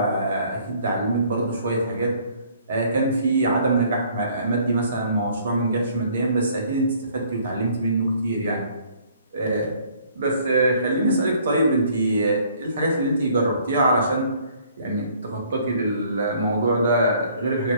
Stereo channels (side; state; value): both; inverted; correlation -0.60